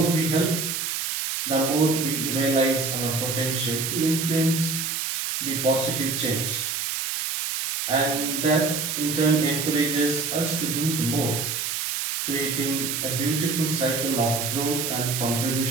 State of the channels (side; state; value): right; noise; hiss, 2 dB below the sound